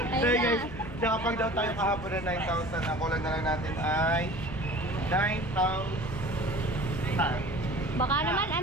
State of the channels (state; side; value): noise; left; hum, 15 dB below the sound